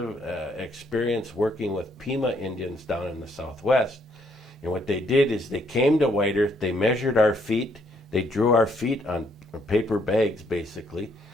experience working with Pima Indians down in the Southwest. And what they did is they came to White Earth, they measured our feet, they drew our feet on paper bags, basically,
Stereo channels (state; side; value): normal; both; correlation 0.70